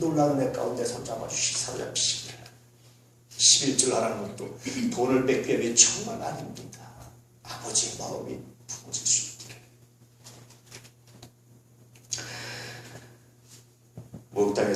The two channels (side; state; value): both; identical; correlation 1.00